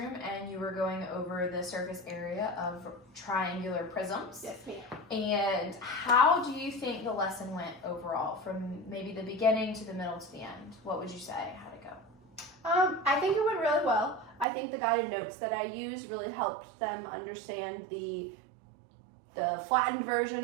and you were going over the surface area of triangular prisms. Yes, ma'am. And how do you think the lesson went overall, from maybe the beginning to the middle to the end? What would you say? How'd it go? I think it went really well. I think the guided notes that I used really helped them understand the flattened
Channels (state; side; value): drops out; left; at 14.5 s